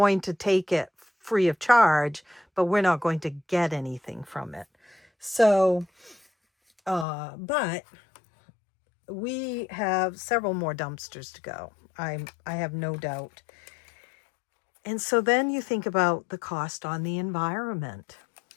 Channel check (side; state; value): right; drops out; at 7.1 s